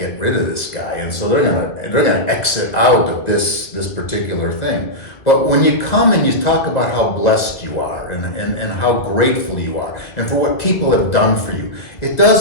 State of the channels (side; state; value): right; late; 1.7 ms